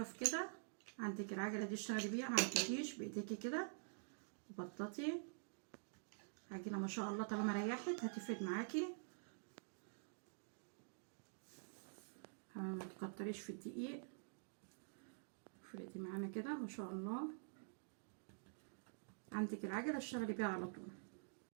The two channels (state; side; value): silent; left; digital silence